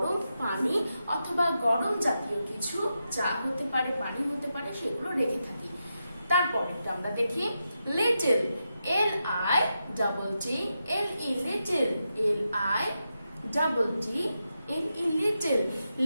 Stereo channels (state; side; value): inverted; both; correlation -0.87